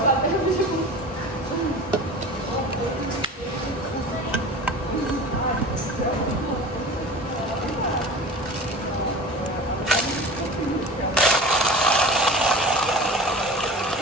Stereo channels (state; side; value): normal; both; correlation 0.35